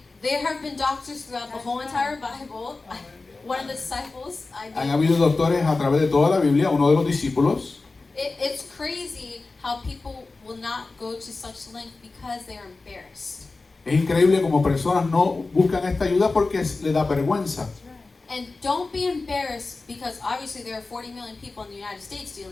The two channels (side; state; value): right; quieter; 3.6 dB